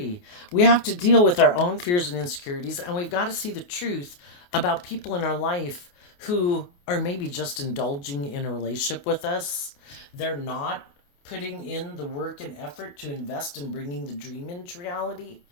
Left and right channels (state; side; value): late; right; 28 ms